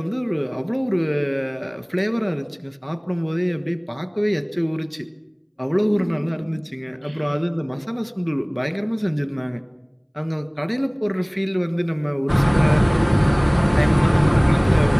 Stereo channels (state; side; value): identical; both; correlation 1.00